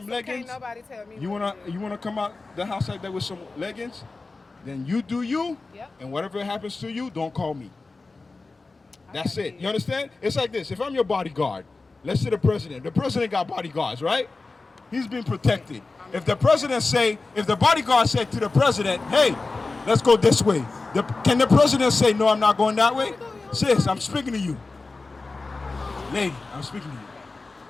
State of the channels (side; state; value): right; quieter; 3.7 dB